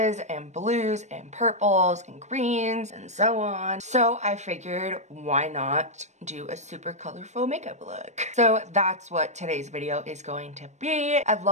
and blues and purples and greens and so on. So I figured, why not do a super colorful makeup look? So that's what today's video is going to be. I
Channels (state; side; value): late; left; 0.34 ms